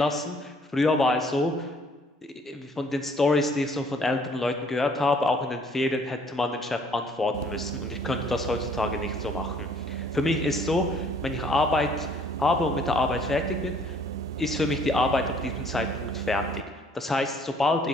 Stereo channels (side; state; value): both; normal; correlation 0.59